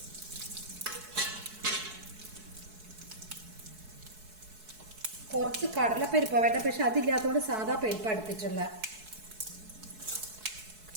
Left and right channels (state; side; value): late; left; 4.7 ms